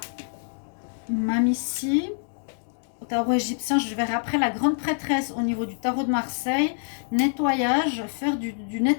Mame ici. Au tarot égyptien, je verrai après la grande prêtresse au niveau du tarot de Marseille. Nettoyage, faire du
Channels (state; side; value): silent; right; 61 dB below the other